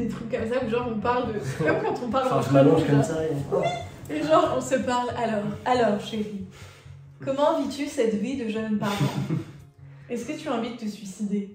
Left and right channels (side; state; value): both; identical; correlation 1.00